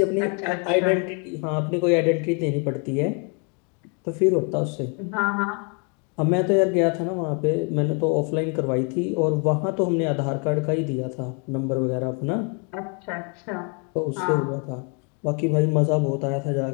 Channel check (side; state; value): right; quieter; 36.8 dB